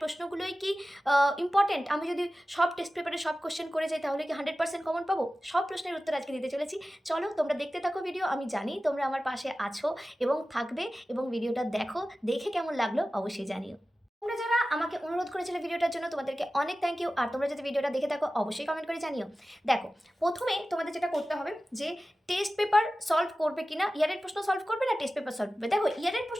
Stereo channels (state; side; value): normal; both; correlation 0.95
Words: প্রশ্নগুলোই কি ইম্পর্ট্যান্ট, আমি যদি সব টেস্ট পেপারে সব কোশ্চেন করে যাই তাহলে কি 100% কমন পাবো? সব প্রশ্নের উত্তর আজকে দিতে চলেছি। চলো তোমরা দেখতে থাকো ভিডিও। আমি জানি তোমরা আমার পাশে আছো এবং থাকবে, এবং ভিডিওটা দেখো, দেখে কেমন লাগলো অবশ্যই জানিও। তোমরা যারা আমাকে অনুরোধ করেছিলে ভিডিওটার জন্য তোমাদেরকে অনেক থ্যাংক ইউ। আর তোমরা যদি ভিডিওটা দেখে থাকো অবশ্যই কমেন্ট করে জানিও। দেখো, প্রথমে তোমাদের যেটা করতে হবে যে টেস্ট পেপার সলভ করবে কিনা, ইয়ারের প্রশ্ন সলভ করবে না টেস্ট পেপার সলভ করবে। দেখো, ইয়ারের